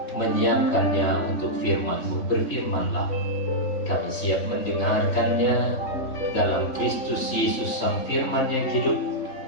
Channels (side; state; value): right; late; 3.5 ms